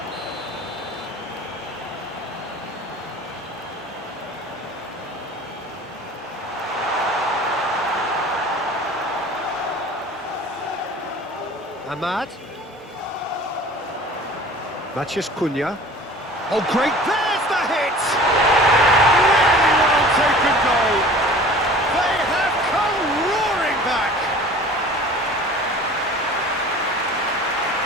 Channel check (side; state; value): both; normal; correlation 0.44